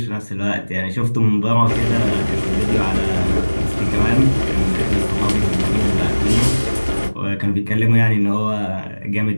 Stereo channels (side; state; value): both; inverted; correlation -1.00